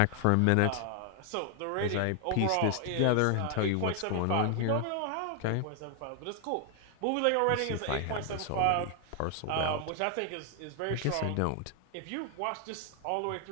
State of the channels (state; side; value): different; both; correlation 0.00